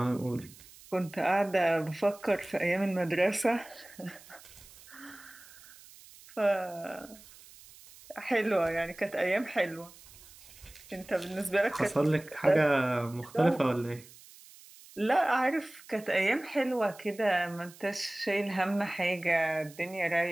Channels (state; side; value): noise; right; hiss, 21 dB below the sound